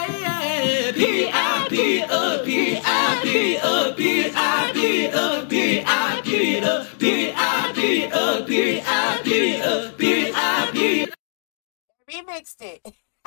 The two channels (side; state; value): right; silent; digital silence